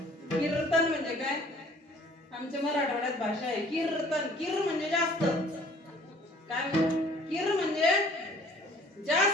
कीर्तन म्हणजे काय? आमच्या मराठवाड्यात भाषा आहे कीर्तन. कीर म्हणजे जास्त. काय? कीर म्हणजे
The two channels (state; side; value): normal; both; correlation 0.54